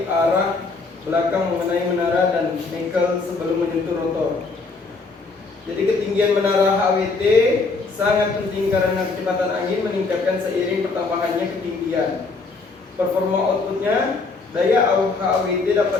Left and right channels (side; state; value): right; quieter; 4.0 dB